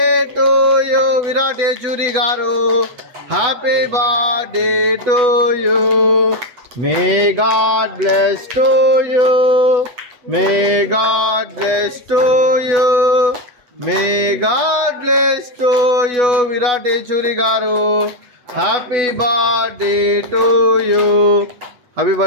to you Virat Yechury garu. Happy birthday to you. May God bless to you, may God bless to you, may God bless to you Virat Yechury garu. Happy birthday to you. Happy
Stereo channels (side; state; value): left; late; 8.1 ms